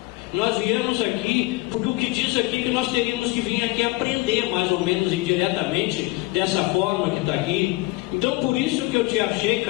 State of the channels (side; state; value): right; quieter; 22.0 dB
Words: Nós viemos aqui, porque o nós teríamos que vir aqui aprender, mais ou menos indiretamente, dessa forma que está aqui. Então, por isso que eu te achei,